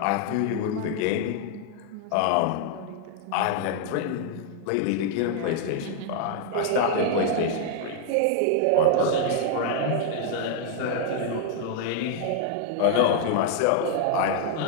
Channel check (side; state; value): both; different; correlation 0.00